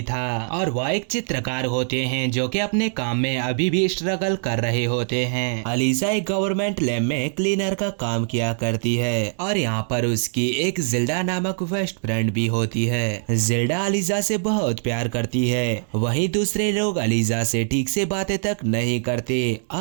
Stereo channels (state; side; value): silent; left; digital silence